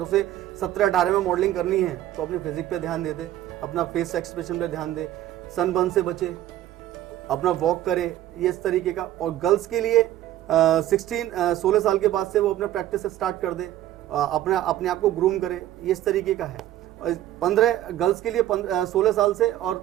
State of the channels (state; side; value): quieter; left; 13.2 dB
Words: उसे 17-18 में मॉडलिंग करनी है तो अपनी फिजिक पे ध्यान दे, अपना फेस एक्सप्रेशन पे ध्यान दे, सनबर्न से बचे, अपना वॉक करे, ये इस तरीके का। और गर्ल्स के लिए 16 साल के बाद से वो अपना प्रैक्टिस स्टार्ट कर दे, अपने आप को ग्रूम करे, ये इस तरीके का है। और 15 गर्ल्स के लिए 16 साल से और